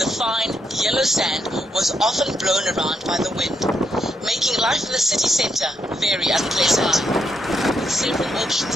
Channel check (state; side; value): normal; both; correlation 0.79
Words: fine, yellow sand was often blown around by the wind, making life in the city centre very unpleasant. With several